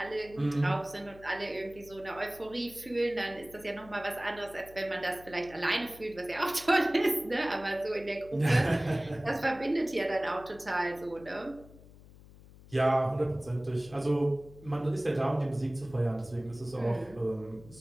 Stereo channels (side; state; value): left; noise; hum, 21 dB below the sound